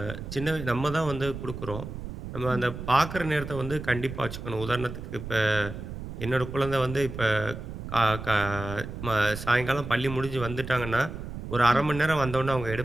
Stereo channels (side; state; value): right; noise; rumble, 9 dB below the sound